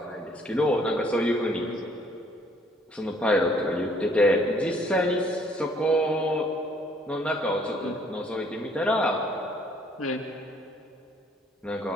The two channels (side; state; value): both; normal; correlation 0.62